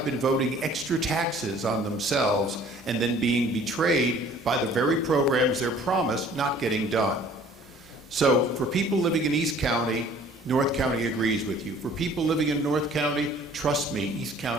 been voting extra taxes on themselves and then being betrayed by the very programs they're promised not getting done. So for people living in East County, North County agrees with you. For people living in North County, trust me, East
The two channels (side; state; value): both; normal; correlation 0.53